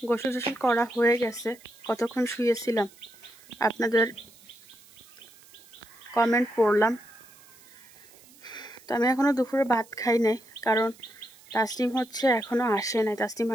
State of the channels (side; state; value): right; noise; hiss, 24 dB below the sound